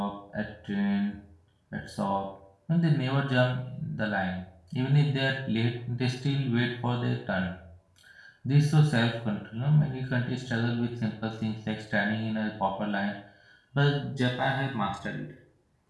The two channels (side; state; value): both; identical; correlation 1.00